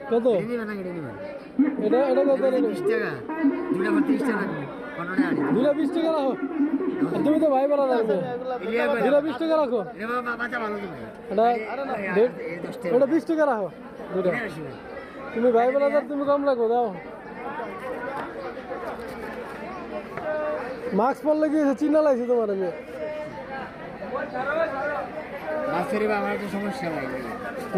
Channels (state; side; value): identical; both; correlation 1.00